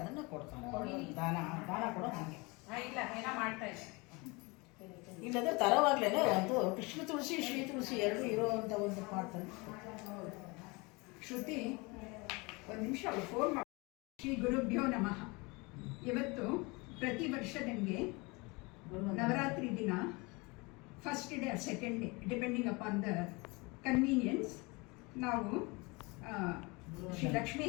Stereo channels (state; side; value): quieter; right; 26.6 dB